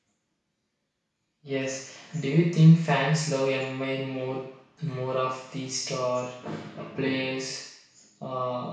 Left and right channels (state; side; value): identical; both; correlation 1.00